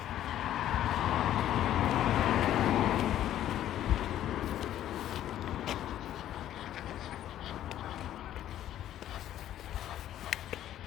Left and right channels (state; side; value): quieter; right; 12.0 dB